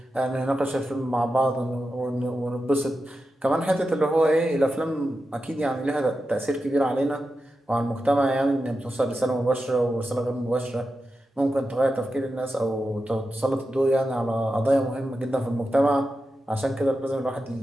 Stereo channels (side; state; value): both; normal; correlation 0.90